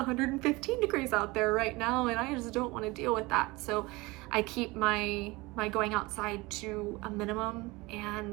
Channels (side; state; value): left; quieter; 22.8 dB